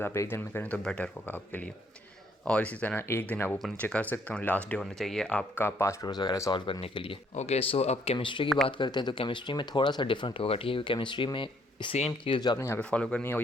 आप एक दिन में करें तो बेटर होगा आपके लिए। और इसी तरह एक दिन आप ऊपर नीचे कर सकते हो, लास्ट डे होना चाहिए आपका पास्ट पेपर्स वगैरह सॉल्व करने के लिए। ओके, सो अब केमिस्ट्री की बात करते हैं। तो केमिस्ट्री में थोड़ा सा डिफरेंट होगा, ठीक है। केमिस्ट्री में सेम चीज़ जो आपने यहाँ पे फॉलो करनी है वो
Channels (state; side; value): normal; both; correlation 0.68